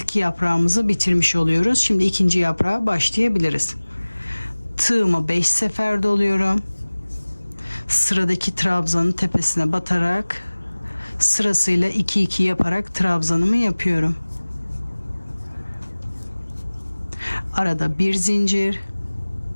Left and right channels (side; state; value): both; inverted; correlation -1.00